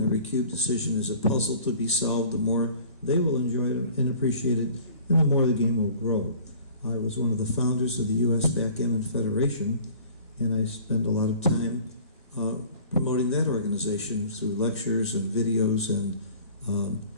every cube decision is a puzzle to be solved, the more they will enjoy it and appreciate it, and the more the game will grow. I was one of the founders of the U.S. Backgammon Federation, and I spend a lot of time promoting that organization through lectures and videos and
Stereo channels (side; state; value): both; inverted; correlation -0.48